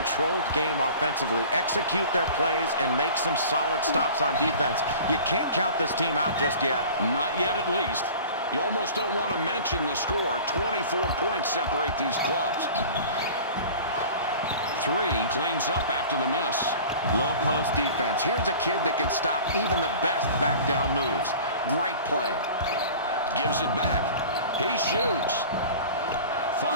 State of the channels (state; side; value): inverted; both; correlation -0.41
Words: game offensively, execute their plays, and make some solid stops on defense, you can't count this team out just yet. Not yet, at least. You almost don't want to mention the score. 24 points separate these clubs. 3 cleans up after the miss. Low post defense. Here's a kid that can stop even the best back down moves. Great play. Gives it back. He shoots.